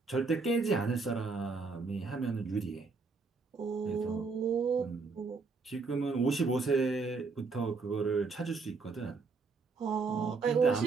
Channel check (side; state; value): left; quieter; 4.4 dB